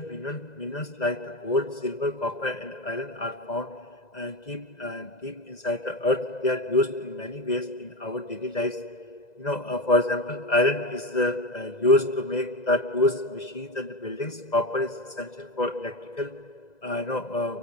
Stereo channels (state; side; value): late; right; 2.0 ms